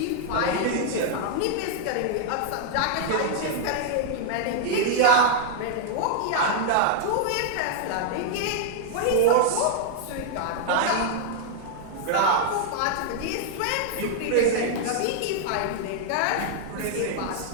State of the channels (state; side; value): different; both; correlation 0.00